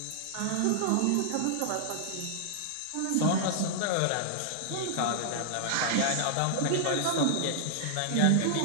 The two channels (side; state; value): both; different; correlation -0.01